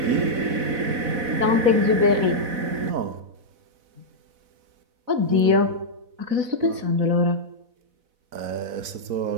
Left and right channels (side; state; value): left; late; 4.1 ms